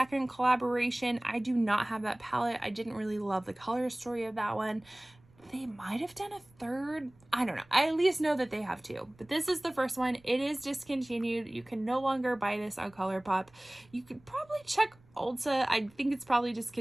collaboration. I do not have that palette. I didn't really love the color story of that one. They might have done a third. I don't know. I at least know that they have two. But this is the first one. It is discontinued. You can no longer buy this on ColourPop. You could probably check Ulta. I think it's probably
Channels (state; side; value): noise; right; rumble, 29 dB below the sound